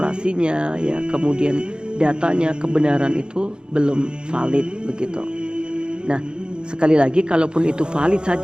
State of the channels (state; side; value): late; left; 0.050 ms